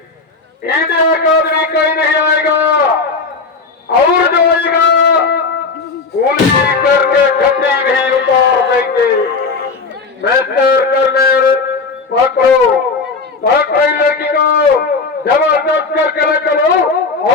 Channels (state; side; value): quieter; right; 4.3 dB